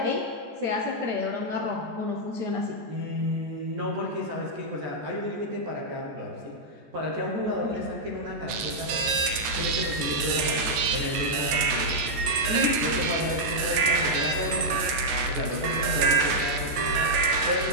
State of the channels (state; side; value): late; left; 14 ms